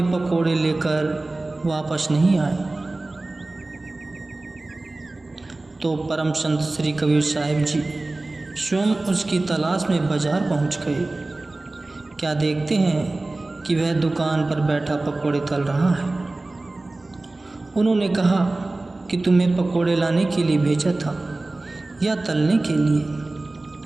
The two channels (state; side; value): quieter; left; 3.0 dB